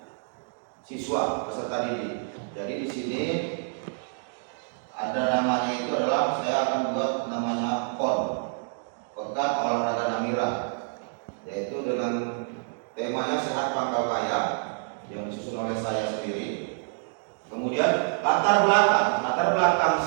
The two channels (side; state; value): left; silent; 60 dB below the other